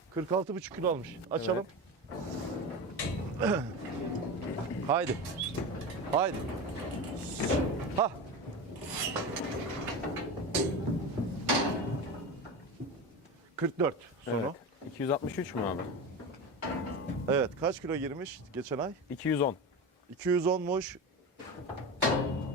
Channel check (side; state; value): both; normal; correlation 0.24